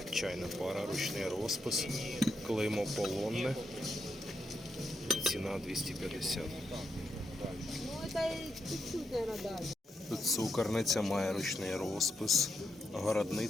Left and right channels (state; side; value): normal; both; correlation 0.83